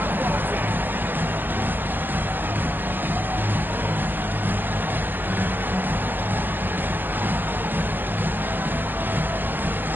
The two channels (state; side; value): late; left; 0.092 ms